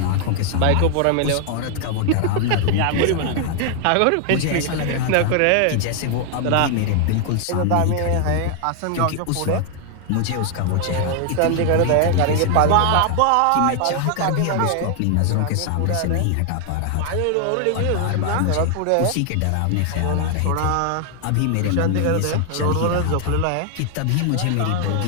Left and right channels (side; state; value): both; different; correlation 0.00